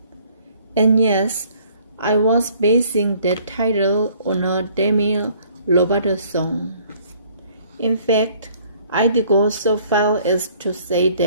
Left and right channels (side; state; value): both; inverted; correlation -0.59